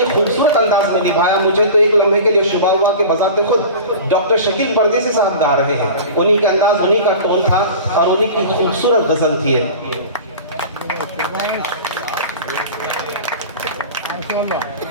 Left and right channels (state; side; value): inverted; both; correlation -0.35